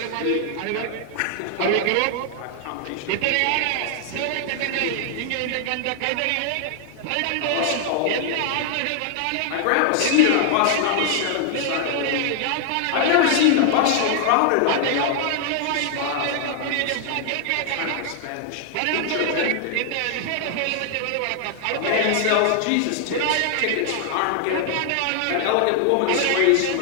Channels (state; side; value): different; both; correlation 0.00